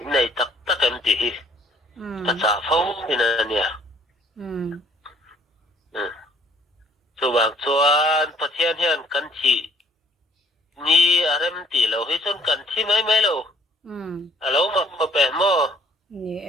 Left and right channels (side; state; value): both; normal; correlation 0.60